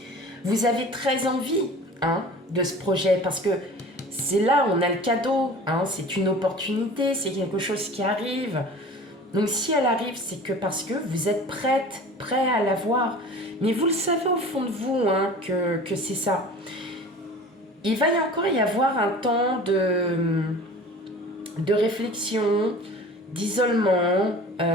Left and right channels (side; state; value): both; normal; correlation 0.41